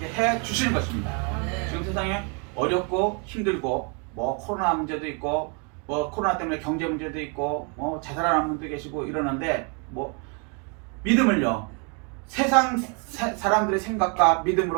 해 주시는 것입니다. 아멘. 지금 세상에 어렵고 힘들고 뭐 코로나 문제도 있고 뭐 코로나 때문에 경제 문제도 있고 뭐 자살하는 분도 계시고 이러는데 뭐 믿음을요 세상 사람들의 생각과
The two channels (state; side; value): quieter; left; 36.3 dB